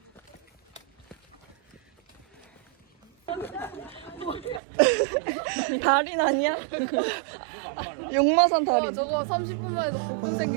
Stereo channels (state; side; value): drops out; left; at 4.6 s